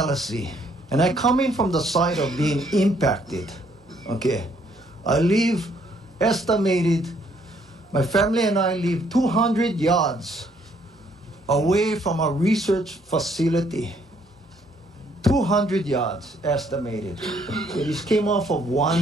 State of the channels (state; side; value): normal; both; correlation 0.67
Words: And I come in from the side of being impacted. Okay. I live estimated, my family and I live 200 yards away from a research facility. 200 yards estimated. It just came off of